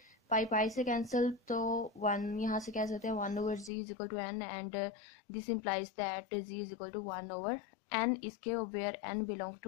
पाई पाई से कैंसिल तो 1 यहाँ से कह सकते हैं 1/z is equal to n and this implies that z is equal to 1/n इसके where n belong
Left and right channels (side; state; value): right; drops out; at 3.7 s